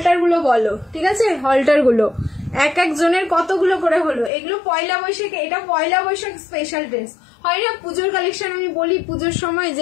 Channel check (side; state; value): right; drops out; at 4.3 s